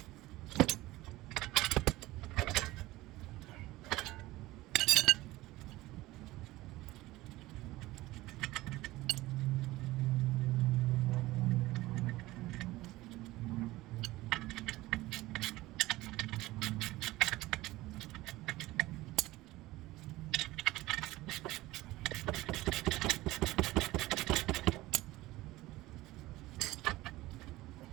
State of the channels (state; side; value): quieter; left; 18.3 dB